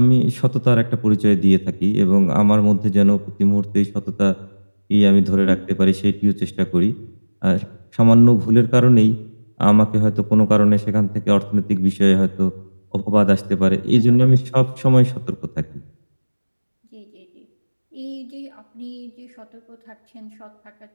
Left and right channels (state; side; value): inverted; both; correlation -1.00